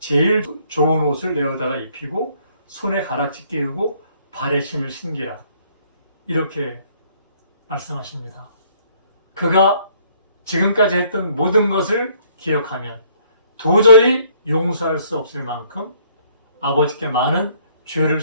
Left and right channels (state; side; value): inverted; both; correlation -0.62